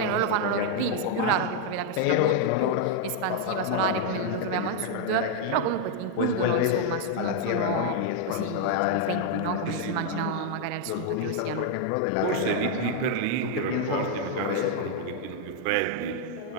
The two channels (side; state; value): both; different; correlation 0.00